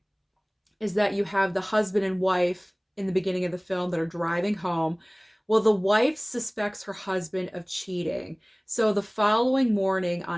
is that you have the husband and wife in the beginning of the film that are driving home. Well, the wife suspects her husband of cheating. So the following morning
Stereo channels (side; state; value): both; identical; correlation 1.00